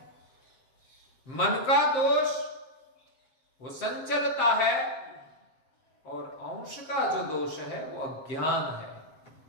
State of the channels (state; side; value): late; right; 7.6 ms